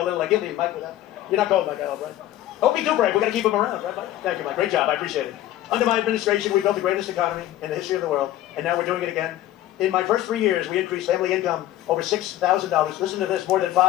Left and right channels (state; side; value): quieter; right; 13.9 dB